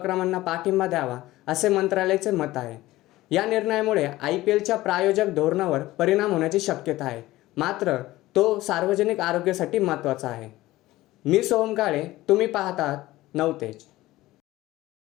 पाठिंबा द्यावा, असे मंत्रालयाचे मत आहे. या निर्णयामुळे IPLच्या प्रायोजक धोरणावर परिणाम होण्याची शक्यता आहे, मात्र तो सार्वजनिक आरोग्यासाठी महत्त्वाचा आहे. मी सोहम काळे, तुम्ही पाहतात नवतेज.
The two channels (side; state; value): right; quieter; 17.3 dB